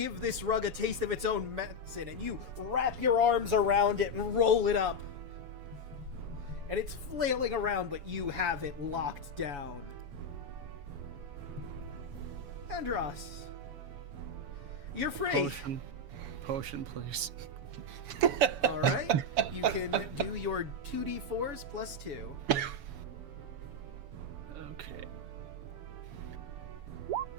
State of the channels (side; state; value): left; late; 7.1 ms